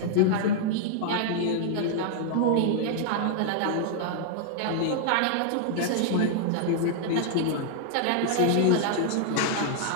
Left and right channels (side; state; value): both; different; correlation -0.01